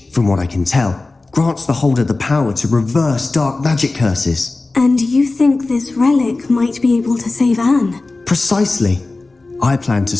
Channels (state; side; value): quieter; right; 3.4 dB